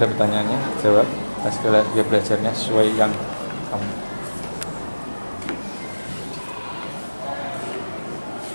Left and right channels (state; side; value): inverted; both; correlation -1.00